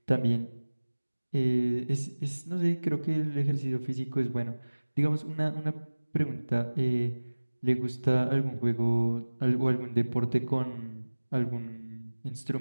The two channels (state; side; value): inverted; both; correlation -1.00